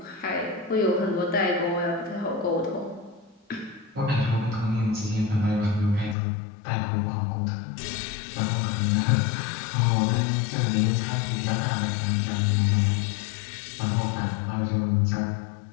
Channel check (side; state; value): right; drops out; at 6.2 s